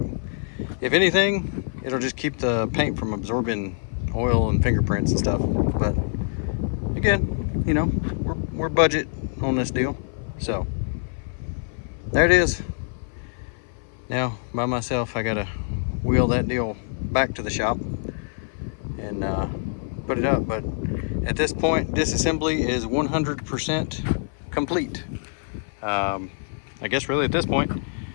If anything, it'll just keep the paint from absorbing oil and fingerprints and stuff. But again, you know, we're budget on this deal. So there it is. Now by myself, I gotta wheel that deal back to the shop and put it up. But at this point, disassembly is 100% complete. I guess really at this point,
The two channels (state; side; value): silent; right; 56 dB below the other